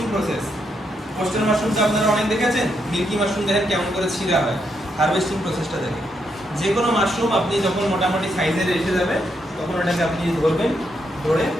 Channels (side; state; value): both; normal; correlation 0.79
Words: প্রসেস। কোস্টাল মাশরুমটা আপনারা অনেক দেখেছেন, মিল্কি মাশরুম দেখেন কেমন করে ছিঁড়া হয়। হারভেস্টিং প্রসেসটা দেখেন। যে কোনো মাশরুম আপনি যখন মোটামুটি সাইজের এসে যাবে, তখন ওটাকে আপনি ধরবেন, ধরে